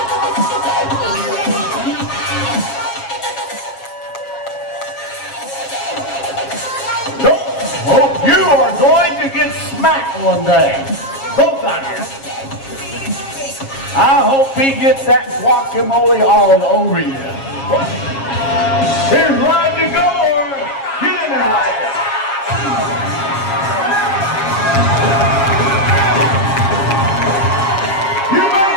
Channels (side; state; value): right; late; 7.4 ms